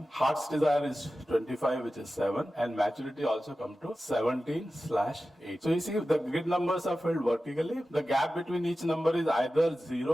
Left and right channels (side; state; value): both; normal; correlation 0.94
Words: Heart's desire is 25, which is 7. And maturity also comes to 17/8. So you see, the grid numbers are filled vertically. The gap between each number is either